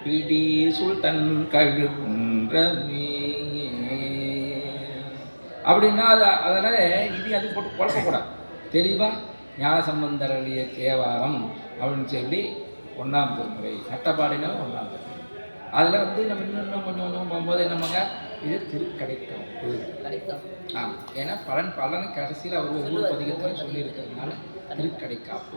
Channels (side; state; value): both; inverted; correlation -1.00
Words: பிடி சுல்தன் கழுகுன்றமே அப்படின்னா அதனால அது போட்டு குழப்பக்கூடாது. தெளிவாக ஞான சம்பந்தர் அருளிய தேவாரம் அப்படின்னு சொல்லி 1ஆம் திருமுறை, நட்டபாடினா 1ஆம் திருமுறை. அதில் நம்ம இன்னும் கொஞ்சம் போகும்போது என்னமாங்க, இது திருக்கடைக்காப்பு. ஆமாம், ஏன்னா பலனை கடைசியில் அவர் ஒவ்வொரு பதிகத்தையும் சொல்லியிருக்கிறதுனால திருக்கடைக்காப்பு